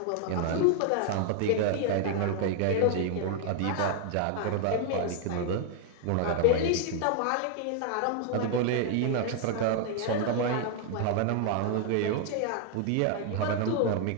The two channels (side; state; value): both; different; correlation 0.00